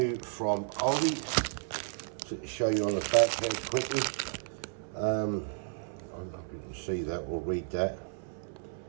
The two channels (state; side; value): silent; left; 56 dB below the other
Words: from Aldi. So to show you on the back here quickly. I don't know if you can see that or read that